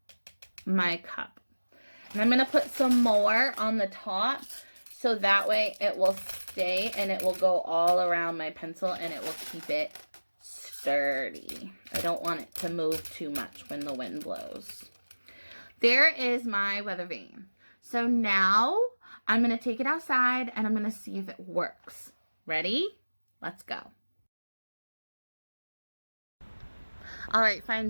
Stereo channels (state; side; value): inverted; both; correlation -1.00